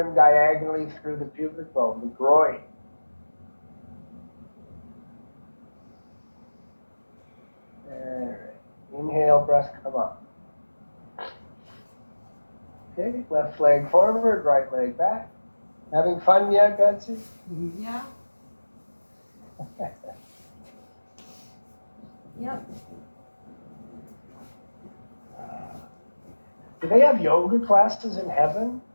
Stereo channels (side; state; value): both; inverted; correlation -1.00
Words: diagonally through the pubic bone, the groin. All right. Inhale, breath come up. Okay, left leg forward, right leg back. Having fun yet, Betsy? Yeah. Yep. Do they have yoga classes in heaven?